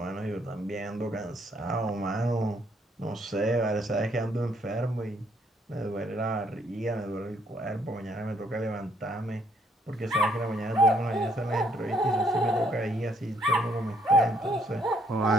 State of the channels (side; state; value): both; normal; correlation 0.69